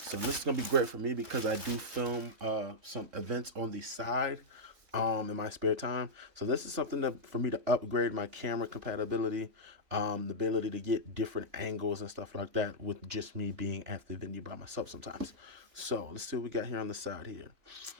So this is going to be great for me because I do film some events on the side in my spare time. So this is something for me to upgrade my camera compatibility, the ability to get different angles and stuff like that with just me being at the venue by myself sometimes. So let's see what we got here on the side here.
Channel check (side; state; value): left; late; 3.5 ms